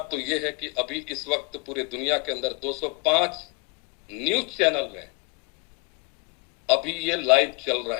तो ये है कि अभी इस वक्त पूरे दुनिया के अंदर 205 न्यूज चैनल में अभी ये लाइव चल रहा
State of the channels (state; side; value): quieter; right; 30.1 dB